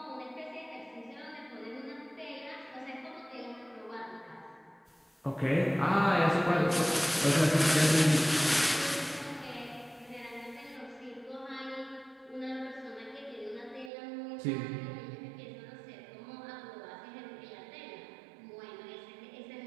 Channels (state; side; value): drops out; left; at 13.9 s